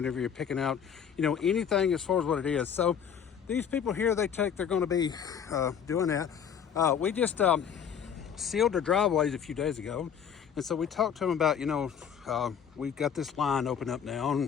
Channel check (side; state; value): right; quieter; 7.9 dB